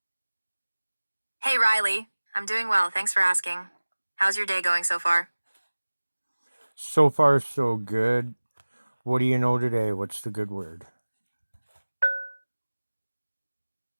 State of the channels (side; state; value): both; inverted; correlation -1.00